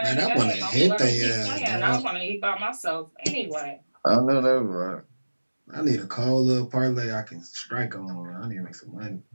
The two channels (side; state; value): both; inverted; correlation -1.00